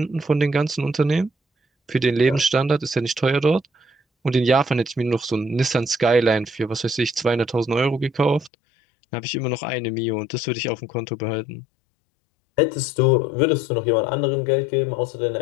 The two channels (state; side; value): drops out; right; at 8.5 s